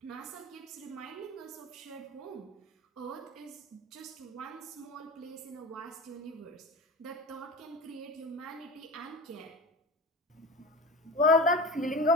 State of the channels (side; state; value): both; normal; correlation 0.31